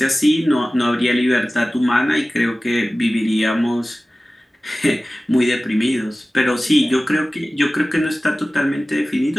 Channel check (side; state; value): both; normal; correlation 0.97